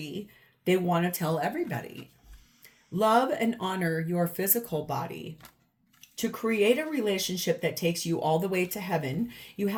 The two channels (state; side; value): identical; both; correlation 1.00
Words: They want to tell everybody. Love and honor your physical body. To create a relationship that takes you all the way to heaven, you